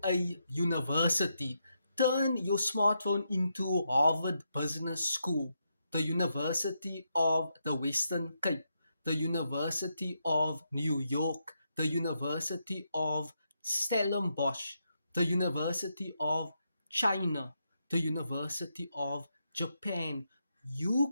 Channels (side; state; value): both; inverted; correlation -0.82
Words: a university. Turn your smartphone into Harvard Business School, the University of the Western Cape, the University of New York, the University of Stellenbosch, the University of China, the University of Japan.